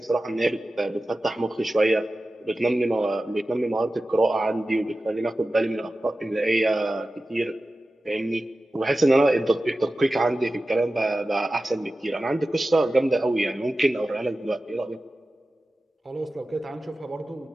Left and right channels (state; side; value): normal; both; correlation 0.94